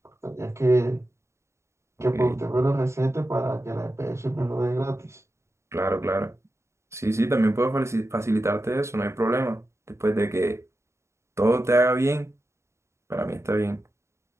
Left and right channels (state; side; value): late; left; 0.13 ms